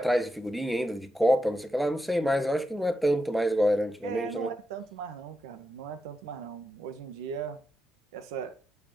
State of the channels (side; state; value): both; normal; correlation 0.87